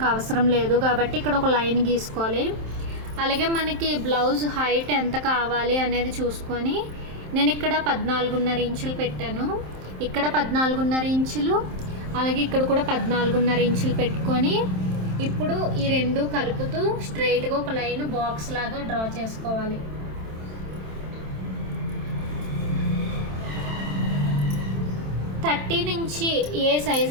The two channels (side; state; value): left; late; 27 ms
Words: అవసరం లేదు కాబట్టి ఇక్కడ ఒక లైన్ గీసుకోవాలి. అలాగే మనకి బ్లౌజ్ హైట్ ఎంత కావాలి అనేది చూసుకొని నేను ఇక్కడ 14.5 ఇంచులు పెట్టాను. ఇక్కడ 14.5 ఇంచులు, అలాగే ఇక్కడ కూడా 14.5 ఇంచులు పెట్టుకొని ఇప్పుడు ఈ రెండు కలుపుతూ స్ట్రైట్గా ఒక లైన్ బాక్స్ లాగా డ్రా చేసుకోవాలి. థర్టీ నుంచి ఏ సైజ్